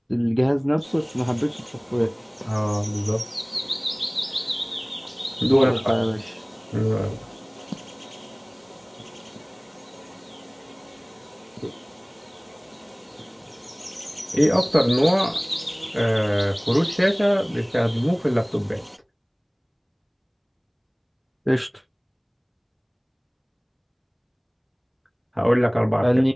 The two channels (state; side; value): identical; both; correlation 1.00